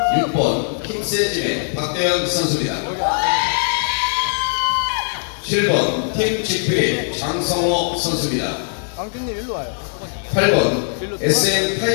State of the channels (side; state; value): right; silent; 66 dB below the other